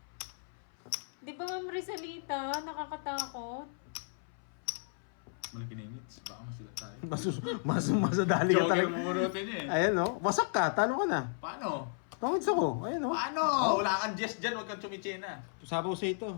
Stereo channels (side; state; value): right; silent; 55 dB below the other